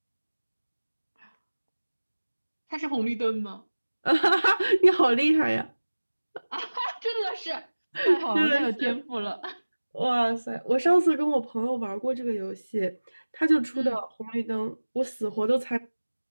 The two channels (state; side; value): inverted; both; correlation -1.00